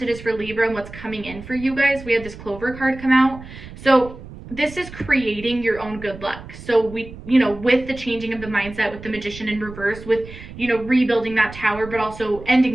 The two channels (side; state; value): right; noise; rumble, 15 dB below the sound